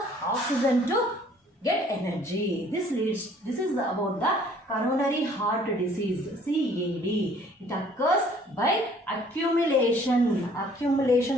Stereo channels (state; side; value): normal; both; correlation 0.57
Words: oxygen to get energy. This is about the coronary heart disease, CAD. It occurs by accumulation